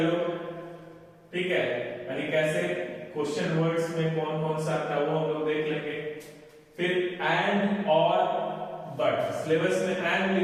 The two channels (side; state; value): both; identical; correlation 1.00